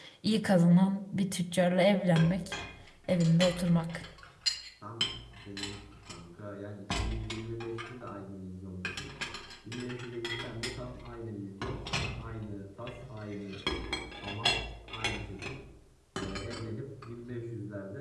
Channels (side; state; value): both; identical; correlation 1.00